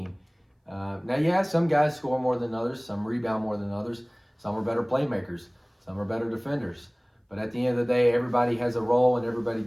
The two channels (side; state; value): both; identical; correlation 1.00